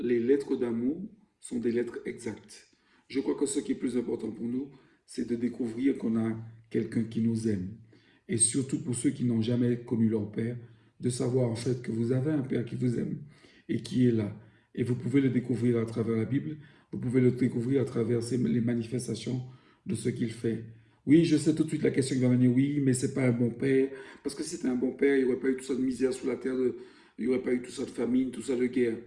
lettres d'amour sont des lettres exactes? Je crois que ce qui est plus important pour nous, c'est de découvrir qu'on a quelqu'un qui nous aime. Et surtout pour ceux qui n'ont jamais connu leur père, de savoir en fait que vous avez un père qui vous aime et qui est là. Et vous pouvez le découvrir à travers la Bible, vous pouvez le découvrir à travers les manifestations de ce qu'il fait. Oui, je sais tout de suite la question qui va venir, oui, mais c'est pas un bon père. Parce que si c'était un bon père, il n'y aurait pas eu tout ça de misère sous la terre, il n'y aurait pas eu tout ça de famine, tout ça de guerre.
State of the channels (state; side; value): identical; both; correlation 1.00